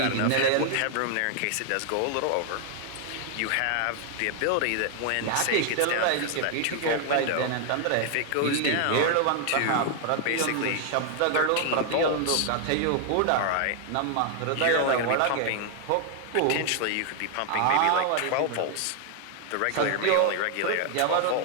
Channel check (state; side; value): different; both; correlation 0.00